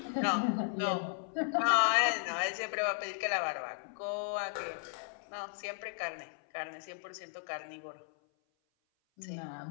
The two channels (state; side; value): silent; right; 54 dB below the other